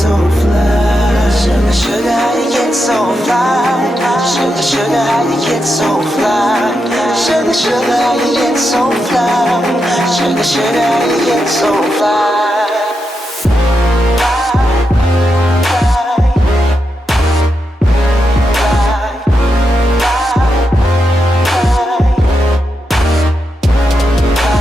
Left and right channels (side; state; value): both; normal; correlation 0.86